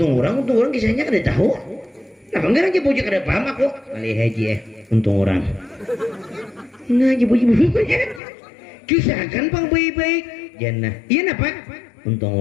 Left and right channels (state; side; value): drops out; right; at 8.2 s